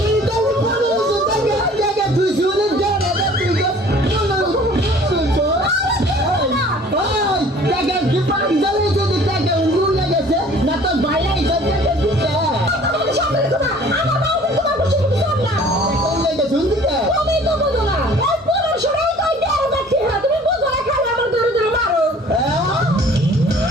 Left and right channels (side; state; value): both; normal; correlation 0.51